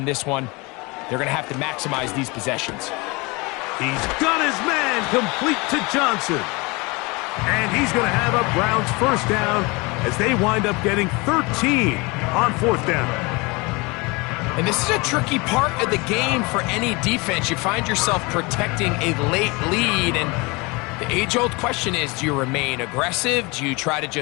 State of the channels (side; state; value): right; quieter; 26.3 dB